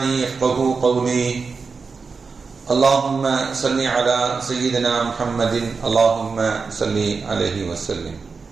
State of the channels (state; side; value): quieter; left; 4.8 dB